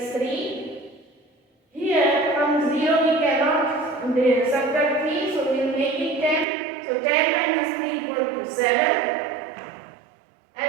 3. Here from 0 we cannot subtract 3, so we will make it 10. So 10 minus 3 equal to 7.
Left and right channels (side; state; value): left; drops out; at 6.5 s